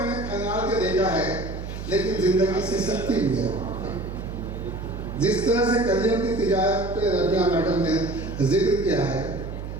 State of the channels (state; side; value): noise; right; hum, 8 dB below the sound